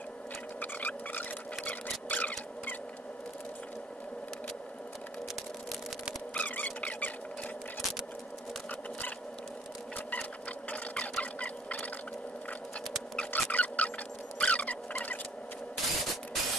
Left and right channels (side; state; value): both; normal; correlation 0.57